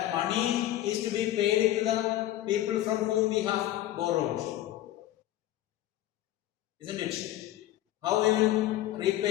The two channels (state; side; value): quieter; right; 14.0 dB